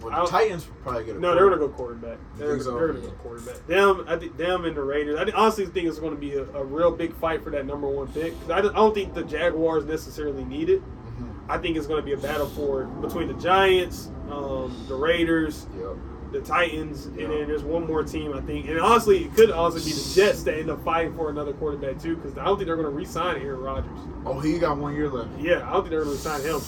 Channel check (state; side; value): identical; both; correlation 1.00